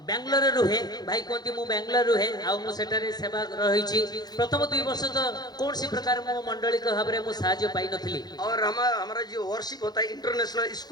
बेंगलोर रुहे भाई कहती मु बेंगलोर रुहे आउ सेटारे सेवा रही प्रथम 2 वर्ष तो कौन सी प्रकार मो मंडली के भाव में साहाय्य पाई नथली। और हमारा जो वर्शिप होता है इंटरनेशनल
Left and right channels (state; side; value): late; right; 0.19 ms